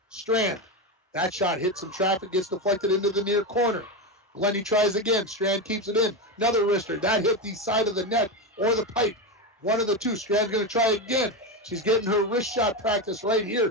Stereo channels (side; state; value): both; normal; correlation 0.14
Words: Strand. That shot hits some traffic, gets deflected into the near corner. Glennie tries again. Strand keeps it in. Another wrister. That hit the side of the net or the pipe. One of the two. Strand's going to try again. She's getting her wrist shot practice right here